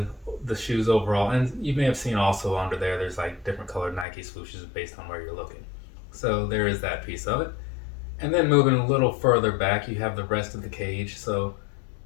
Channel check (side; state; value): right; drops out; at 4.0 s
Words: the shoes overall, and you may have seen also under there, there's like different colored Nike swooshes based on where you're looking. So there is that piece of it. And then moving a little further back, you have the rest of the cage. So